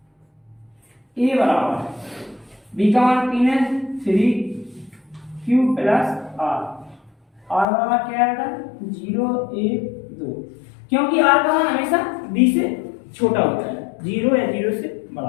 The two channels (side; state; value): right; drops out; at 7.7 s